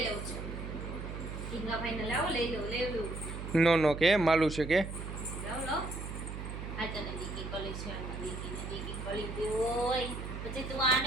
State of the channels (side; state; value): right; noise; hum, 7 dB below the sound